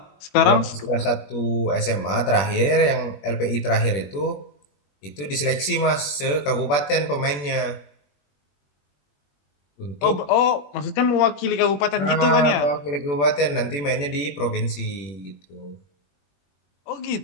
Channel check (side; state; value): right; late; 21 ms